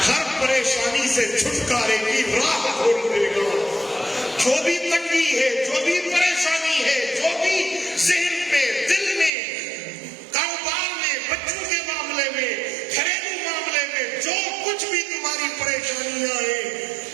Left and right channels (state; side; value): drops out; left; at 9.3 s